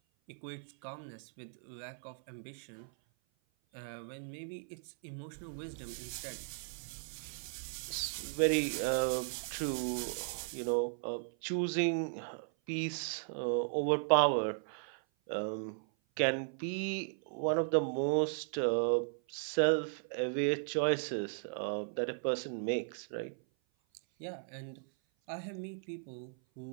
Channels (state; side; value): silent; left; 53 dB below the other